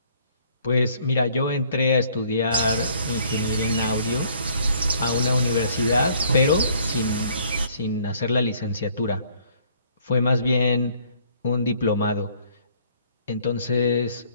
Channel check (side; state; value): both; inverted; correlation -0.61